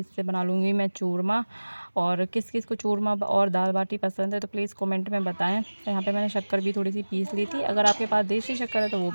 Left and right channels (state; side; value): inverted; both; correlation -1.00